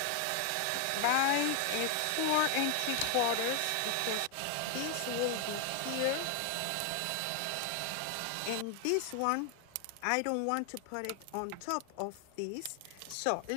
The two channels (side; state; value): both; different; correlation 0.01